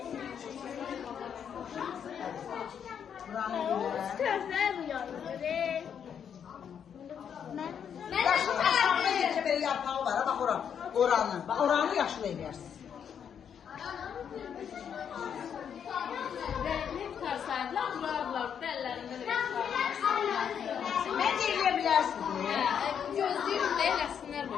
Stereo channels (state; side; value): quieter; right; 8.0 dB